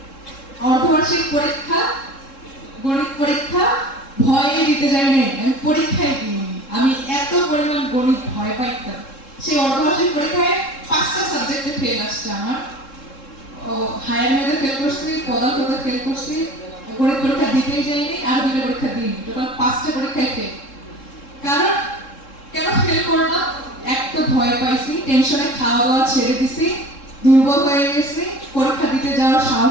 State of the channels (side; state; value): right; late; 3.7 ms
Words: অর্ধবার্ষিক পরীক্ষা, গণিত পরীক্ষা ভয়ে দিতে যাই নাই, আমি পরীক্ষায় দিইনি। আমি এত পরিমাণ গণিত ভয় পাইতাম। সেই অর্ধবার্ষিক পরীক্ষায় 5টা সাবজেক্টে ফেল আসছে আমার। হায়ার ম্যাথে ফেল করছি, পদার্থতে ফেল করছি, গণিত পরীক্ষা দিতেই যাইনি, আর 2টা পরীক্ষা দিইনি, টোটাল 5টা পরীক্ষায় ফেল। কারণ কেন ফেল করলাম? এক তো ভয় পাইছি, টেনশনে খাওয়া দাওয়া ছেড়ে দিছি, দুর্বল হয়ে গেছি, পরীক্ষা দিতে যাওয়ার